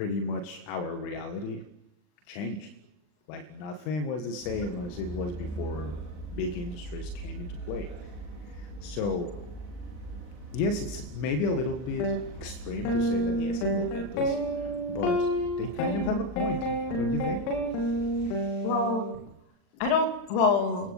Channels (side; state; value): right; late; 40 ms